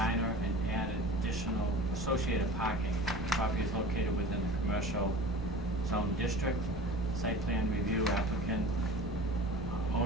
and add additional associated parking. The property is located within the commercial zone district. Site plan review applicant,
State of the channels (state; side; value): normal; both; correlation 0.39